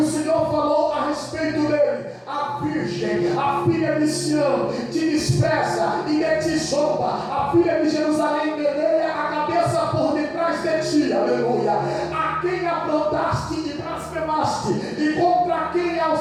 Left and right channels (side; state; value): both; identical; correlation 1.00